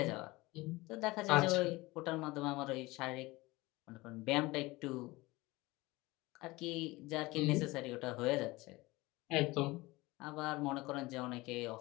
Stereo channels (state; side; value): quieter; right; 21.3 dB